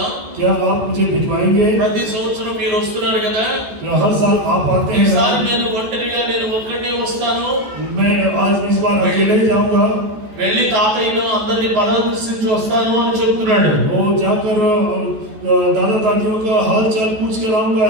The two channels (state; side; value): late; left; 14 ms